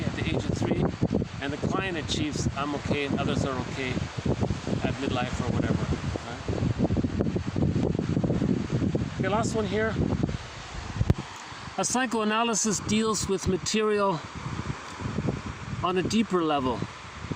at the age of 3, and the client achieves I'm okay and others are okay at midlife or whatever. Right? Okay, last one here. A psychoanalysis deals with material on a deeper level.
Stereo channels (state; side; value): identical; both; correlation 1.00